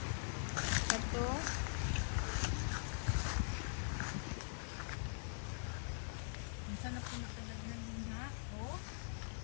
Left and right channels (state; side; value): silent; right; digital silence